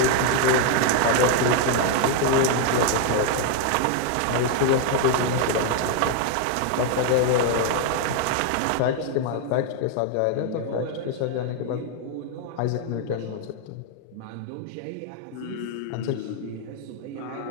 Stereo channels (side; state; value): both; different; correlation 0.00